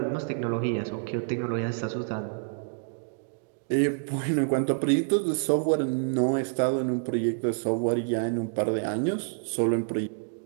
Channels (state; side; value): silent; left; digital silence